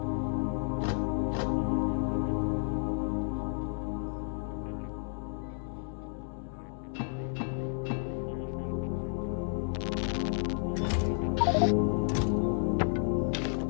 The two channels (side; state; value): right; silent; 57 dB below the other